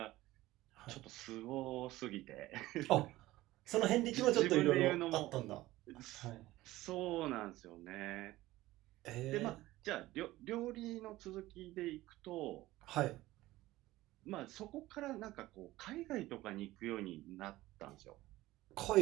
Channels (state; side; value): quieter; left; 17.2 dB